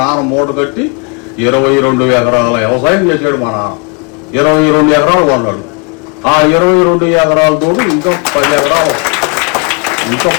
నాన్న మూట కట్టి 22 ఎకరాల వ్యవసాయం చేశాడు. మా నాన్న 22 ఎకరాలు కొన్నాడు. ఆ 22 ఎకరాలతో ఇంకా 10 ఎకరాలు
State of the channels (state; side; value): quieter; right; 34.0 dB